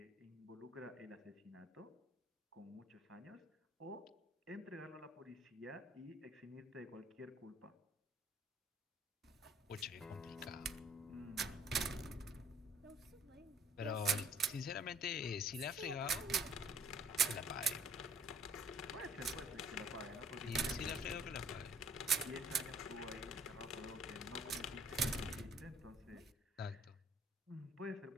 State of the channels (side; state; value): both; normal; correlation 0.57